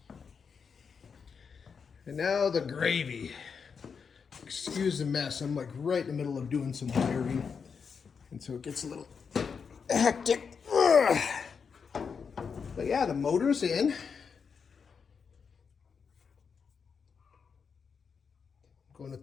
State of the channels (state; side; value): quieter; right; 6.0 dB